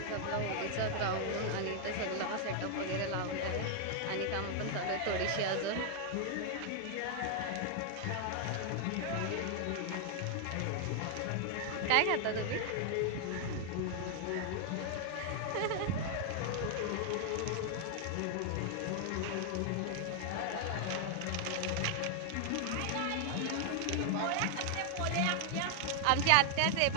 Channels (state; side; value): different; both; correlation 0.00